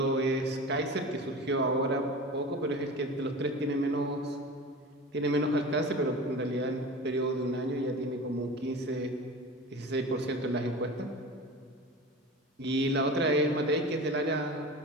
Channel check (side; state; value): both; normal; correlation 0.33